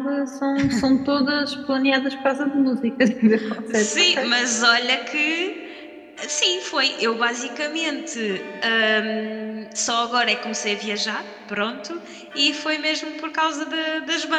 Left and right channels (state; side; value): identical; both; correlation 1.00